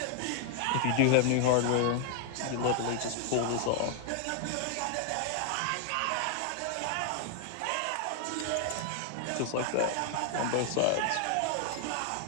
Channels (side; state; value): both; different; correlation 0.00